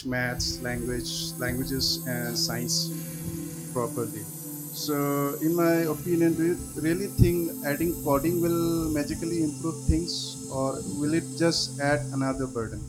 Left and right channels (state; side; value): identical; both; correlation 1.00